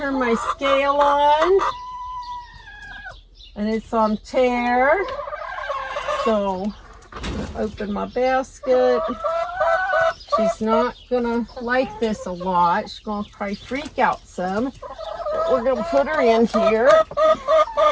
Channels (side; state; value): both; identical; correlation 1.00